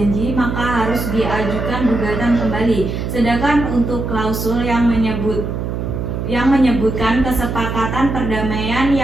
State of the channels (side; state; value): right; noise; hum, 3 dB below the sound